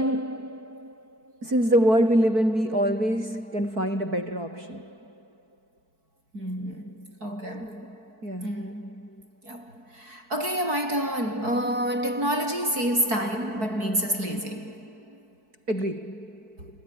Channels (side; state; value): left; late; 4.6 ms